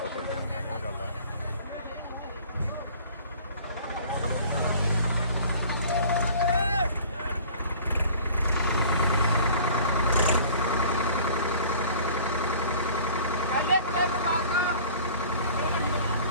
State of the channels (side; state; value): both; inverted; correlation -0.48